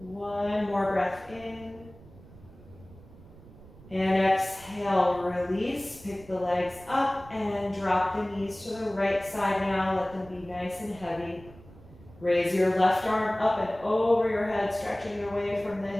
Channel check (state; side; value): noise; right; rumble, 21 dB below the sound